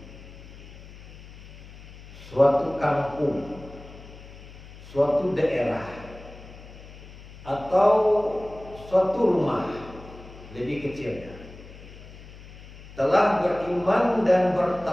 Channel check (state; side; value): noise; left; hum, 17 dB below the sound